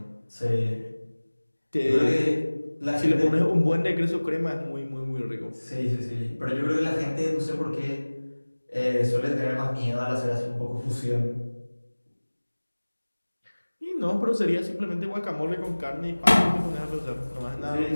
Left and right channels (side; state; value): both; inverted; correlation -1.00